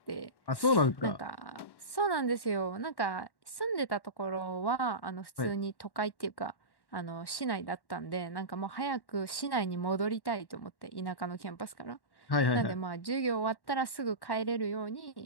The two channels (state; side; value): late; right; 1.1 ms